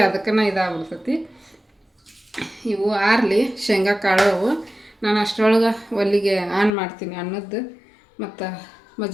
ಅದಕ್ಕನ ಇದಾಗ್ಬಿಡ್ತೈತಿ. ಇವು ಆರ್ಲಿ ಶೇಂಗಾ ಕಾಳು. ನಾನು ಅಷ್ಟರೊಳಗೆ ಒಲ್ಲಿಗೆ ಆನ್ ಮಾಡ್ತೀನಿ ಅನ್ನದ್ದು, ಮತ್ತು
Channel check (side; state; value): right; drops out; at 6.7 s